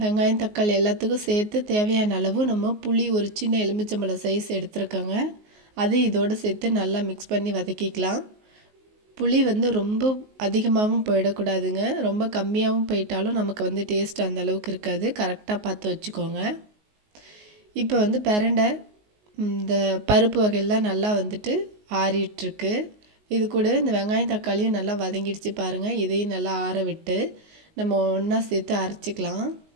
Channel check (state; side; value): late; left; 19 ms